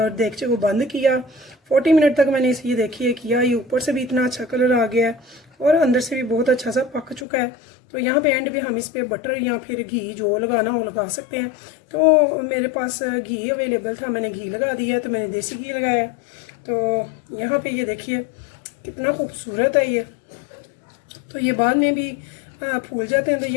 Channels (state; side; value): drops out; right; at 7.2 s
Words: देगचे को बंद किया। 40 मिनट तक मैंने इसे ये देखिए किया, ये ऊपर से भी इतना अच्छा कलर आ गया है और अंदर से भी बहुत अच्छा सा पक चुका है। तो यहाँ पे एंड पे हम इस पे बटर या फिर घी जो लगाना हो लगा सकते हैं। तो मेरे पास घी अवेलेबल था, मैंने घी लगा दिया, तो मैंने देसी घी लगाया। तो यहाँ पे ये देखिए कितना खूबसूरत है ये। तो ये बाद में भी फूल जाते हैं। तो